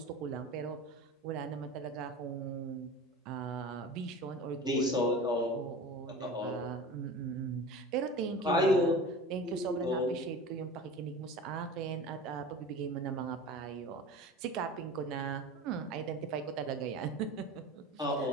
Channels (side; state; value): both; normal; correlation 0.36